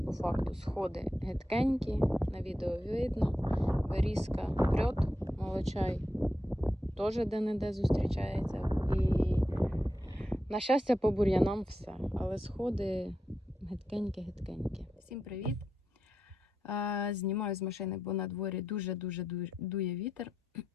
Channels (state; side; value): normal; both; correlation 0.87